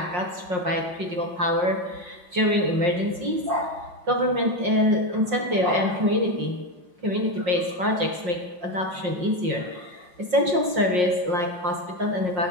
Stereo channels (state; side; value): late; left; 5.6 ms